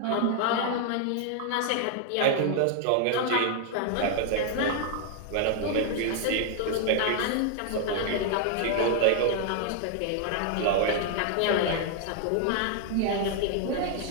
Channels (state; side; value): different; both; correlation 0.00